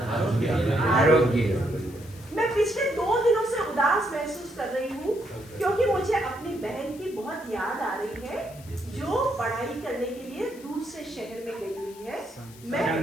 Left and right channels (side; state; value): left; noise; hiss, 21 dB below the sound